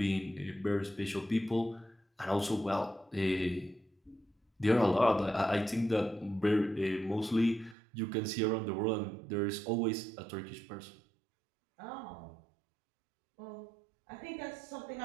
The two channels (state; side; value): drops out; left; at 7.8 s